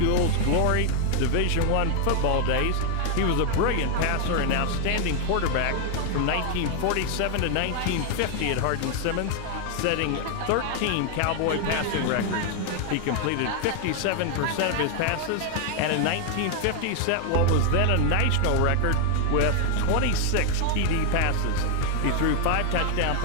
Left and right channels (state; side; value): different; both; correlation 0.00